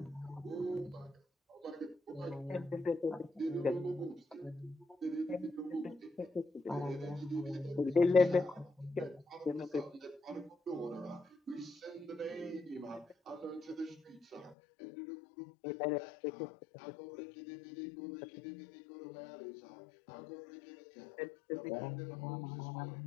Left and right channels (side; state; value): right; drops out; at 14.6 s